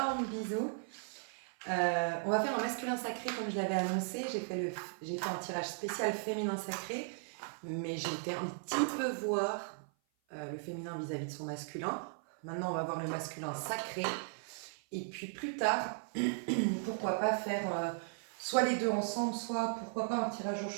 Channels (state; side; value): silent; left; 53 dB below the other